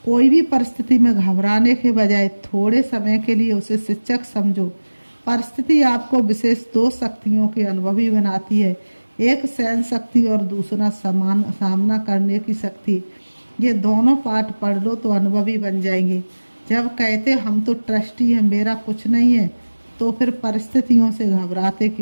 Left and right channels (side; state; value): both; inverted; correlation -1.00